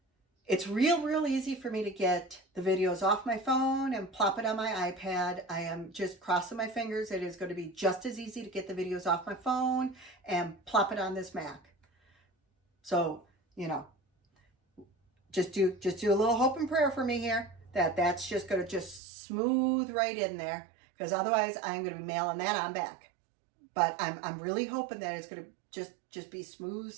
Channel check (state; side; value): drops out; left; at 19.0 s